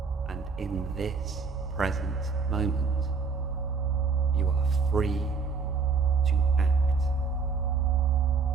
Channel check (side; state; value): left; quieter; 5.0 dB